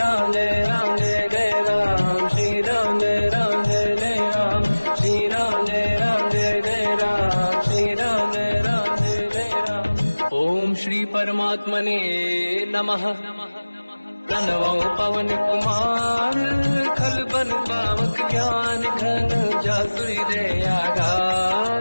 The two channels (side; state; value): both; inverted; correlation -1.00